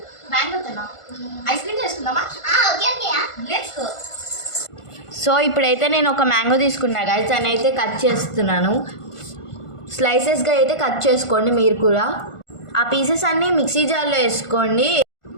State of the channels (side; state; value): right; late; 1.5 ms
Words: మ్యాంగోతోనా ఐస్ క్రీమ్ చేసుకుందామా okay okay let's go so ఇప్పుడైతే నేను ఒక మ్యాంగో తీసుకున్నా గైస్ దాన్ని అయితే కట్ చేస్తున్నాను స్లైసెస్గా అయితే కట్ చేసుకోండి మీరు కూడా ఆ పీసెస్ అన్నీ మిక్సీ జార్లో వేసుకోండి